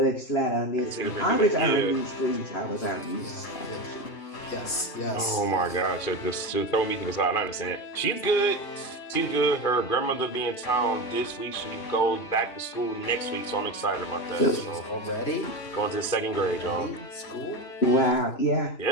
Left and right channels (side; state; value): right; late; 2.4 ms